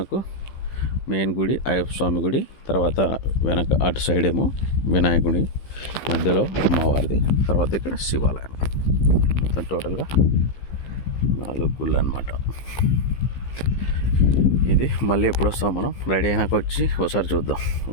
మెయిన్ గుడి అయ్యప్ప స్వామి గుడి, తర్వాత వెనక అటు సైడ్ ఏమో వినాయకుడి, మధ్యలో అమ్మవారిది, తర్వాత ఇక్కడ శివాలయం. మొత్తం టోటల్గా 4 గుళ్ళు అన్నమాట. ఇది మళ్ళీ ఎప్పుడు వస్తాం మనం, రెడీ అయినాక వచ్చి ఒకసారి చూద్దాం.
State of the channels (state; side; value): late; right; 15 ms